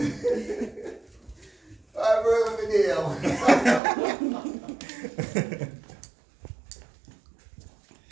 Alright, bro, let me deal.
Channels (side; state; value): left; drops out; at 3.8 s